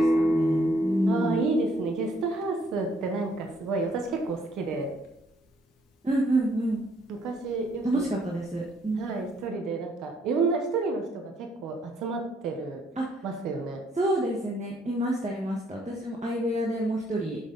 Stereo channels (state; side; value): normal; both; correlation 0.67